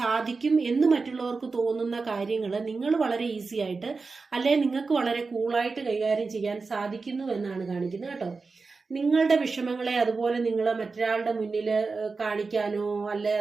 എന്ന് മറ്റുള്ളവർക്ക് തോന്നുന്ന കാര്യങ്ങൾ നിങ്ങൾ വളരെ ഈസി ആയിട്ട്, അല്ലെങ്കിൽ നിങ്ങൾക്ക് വളരെ കൂളായിട്ട് കൈകാര്യം ചെയ്യാൻ സാധിക്കുന്നു എന്നാണ് കാണിക്കുന്നത് കേട്ടോ. നിങ്ങളുടെ വിഷമങ്ങളെ അതുപോലെ നിങ്ങൾ മറ്റൊരാളുടെ മുന്നിൽ കാണിക്കാനോ അല്ലെ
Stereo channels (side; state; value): left; quieter; 4.3 dB